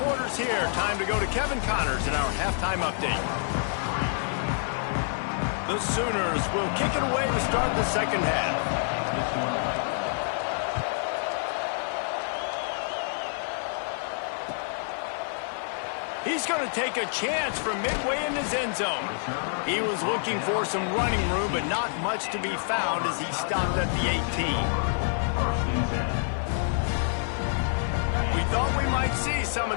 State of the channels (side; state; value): right; silent; 60 dB below the other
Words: quarters here. Time to go to Kevin Connors in our halftime update. The Sooners will kick it away to start the second half. He's going to take a chance from midway in his end zone. He was looking for some running room, but not much to be found as he stopped at the 18. We thought we might see some